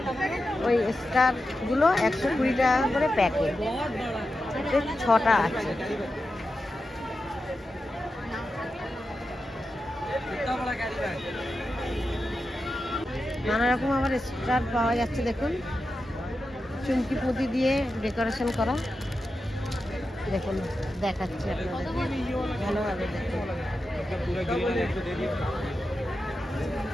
ওই স্টারগুলো 120 টাকা করে প্যাকেট, 6টা আছে। নানা রকম আবার স্টার পাওয়া যাচ্ছে, দেখুন চুমকি পুঁতি দিয়ে ডেকোরেশন করা। দেখুন দেখাচ্ছি আপনাদের ভালোভাবে, দেখুন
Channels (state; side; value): normal; both; correlation 0.90